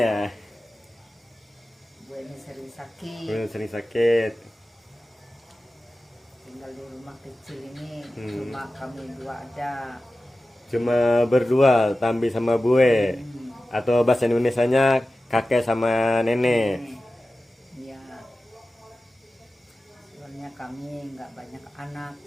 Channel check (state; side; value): normal; both; correlation 0.95